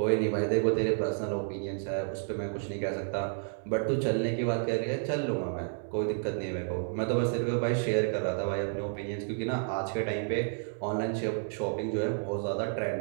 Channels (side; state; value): left; silent; 57 dB below the other